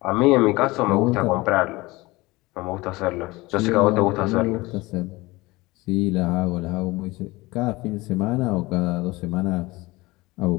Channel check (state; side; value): quieter; right; 21.5 dB